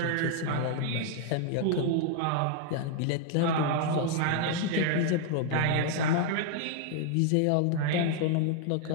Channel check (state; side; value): different; both; correlation 0.00